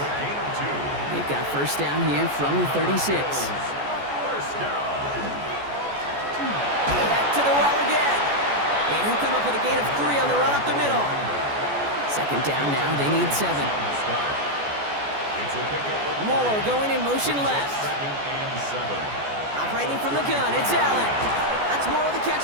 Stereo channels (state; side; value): late; left; 14 ms